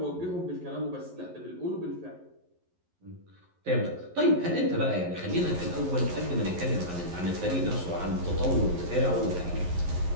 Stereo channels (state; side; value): late; left; 11 ms